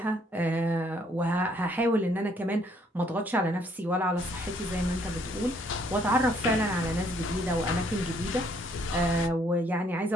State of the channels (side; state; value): both; normal; correlation 0.66